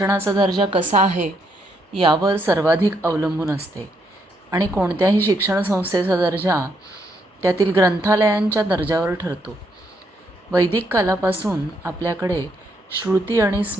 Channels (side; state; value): both; normal; correlation 0.75